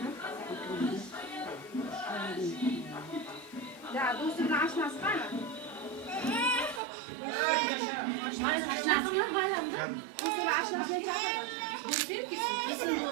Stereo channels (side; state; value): left; drops out; at 6.8 s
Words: Ya dostum açmaz var mı?